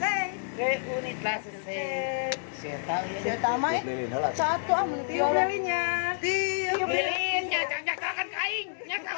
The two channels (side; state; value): right; silent; 56 dB below the other